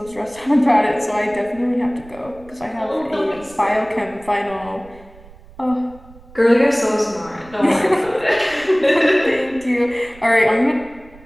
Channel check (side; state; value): right; noise; rumble, 23 dB below the sound